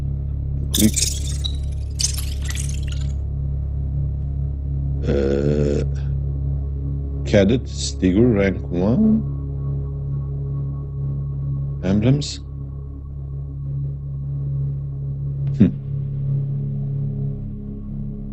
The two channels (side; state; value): both; identical; correlation 1.00